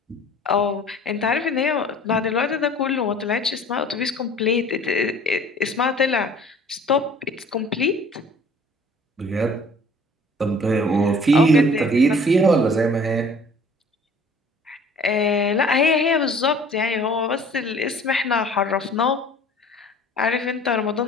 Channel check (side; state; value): both; normal; correlation 0.49